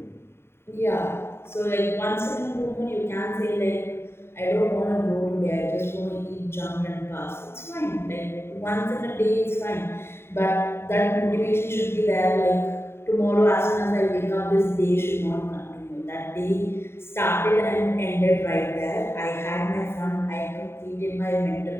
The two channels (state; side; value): late; right; 0.12 ms